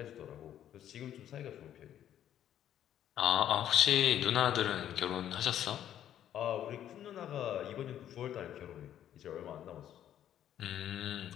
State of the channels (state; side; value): quieter; right; 10.8 dB